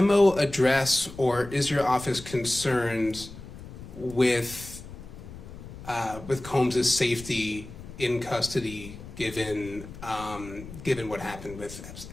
address, or is your office concerned with with Combs' safety in custody, given what happened with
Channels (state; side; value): noise; left; rumble, 14 dB below the sound